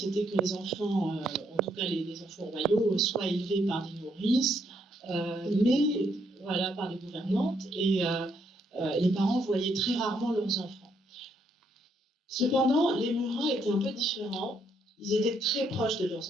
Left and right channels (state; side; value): normal; both; correlation 0.73